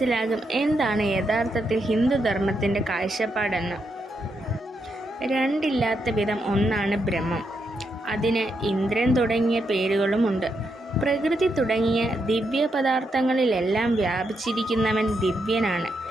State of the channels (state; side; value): normal; both; correlation 0.81